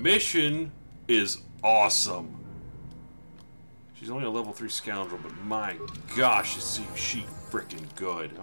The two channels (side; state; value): both; inverted; correlation -1.00